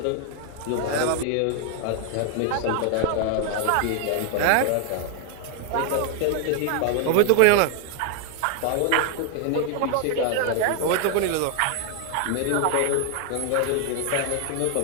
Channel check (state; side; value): different; both; correlation 0.00